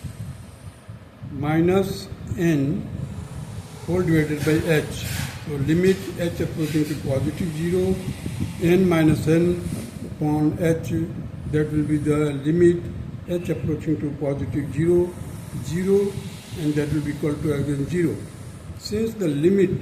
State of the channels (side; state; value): both; identical; correlation 1.00